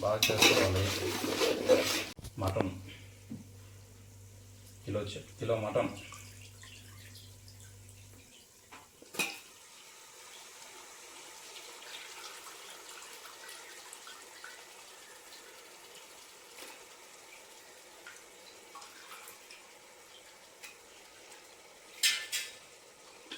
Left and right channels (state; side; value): identical; both; correlation 1.00